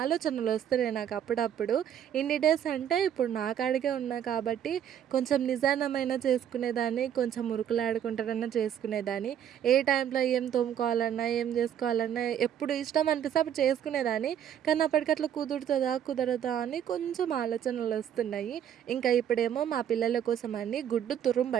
వస్తున్నాయి నాకు అప్పుడప్పుడు. ఇన్ని డేస్ అంటే ఇప్పుడు నా కాడికే ఉన్నా కాబట్టి కొంచెం నిదానమైన చేసుకునేదాన్ని, కొంచెం ఉరుకులాడుకుంటారన్నా చేసుకునేదాన్ని. ఏ టైంలో ఏం తోముకోవాలన్నా, ఏం చేసుకోవాలన్నా ఎప్పుడు ఇష్టం అనిపిస్తే అప్పుడు చేసుకునేదాన్ని. కానీ అప్పటికట్లా కుదురుతుందా కుదరదా అని కొంచెం ఆలోచనలు వస్తున్నాయి. ఇంకా ఇప్పుడేమో మా పిల్లల కోసం అని గుడ్డు తురుము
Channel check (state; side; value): quieter; left; 9.7 dB